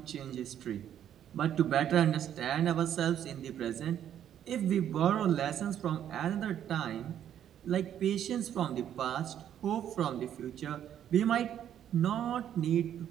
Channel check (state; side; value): quieter; left; 10.2 dB